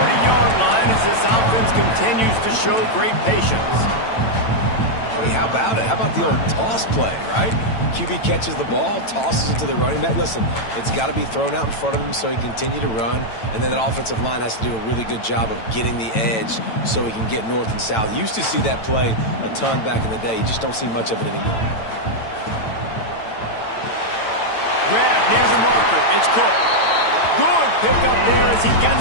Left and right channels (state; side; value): late; right; 9.0 ms